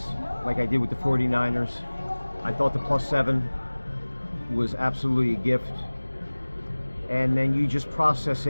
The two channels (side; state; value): both; inverted; correlation -1.00